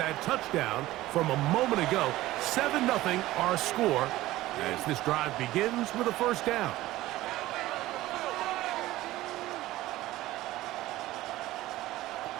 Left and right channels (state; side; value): quieter; left; 16.6 dB